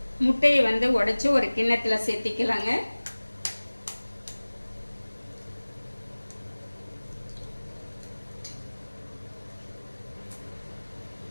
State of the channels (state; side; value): inverted; both; correlation -1.00